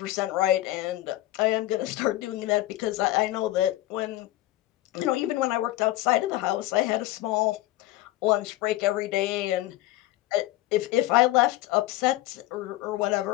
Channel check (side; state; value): right; quieter; 16.3 dB